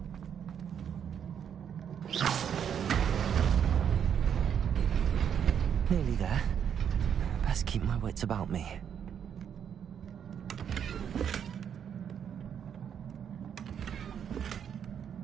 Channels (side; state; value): left; quieter; 8.3 dB